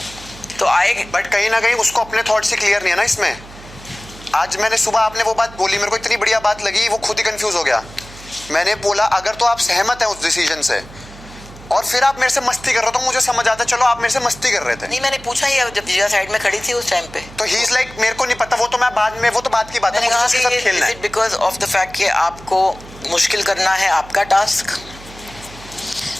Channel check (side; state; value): right; noise; hum, 18 dB below the sound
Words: तो आएगा। बट कहीं ना कहीं उसको अपने थॉट से क्लियर नहीं है ना इसमें। आज मैंने सुबह आपने वो बात बोली, मेरे को इतनी बढ़िया बात लगी, वो खुद ही कंफ्यूज हो गया। मैंने बोला अगर तो आप सहमत हैं उस डिसीजन से, और फिर आप मेरे से मस्ती कर रहे हो तो मुझे समझ आता, चलो आप मेरे से मस्ती कर रहे थे। नहीं मैंने पूछा ही जब जिया साइड में खड़ी थी उस टाइम पे, तो ही इज लाइक मेरे को नहीं पता, वो तो मैं बाद में, वो तो बात की बात है, मुझे उसके साथ खेलना है। बिकॉज ऑफ द फैक्ट कि आपको मुश्किल करना है आपका टास्क।